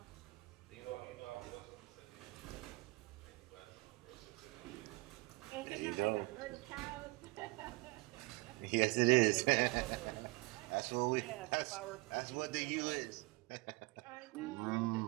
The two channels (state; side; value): quieter; left; 24.0 dB